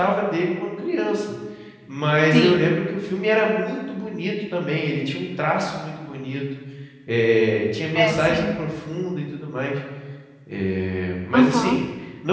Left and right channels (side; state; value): both; identical; correlation 1.00